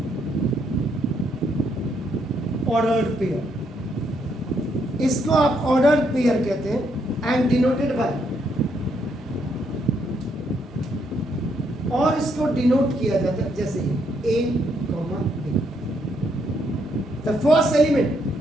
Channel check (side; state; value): both; normal; correlation 0.74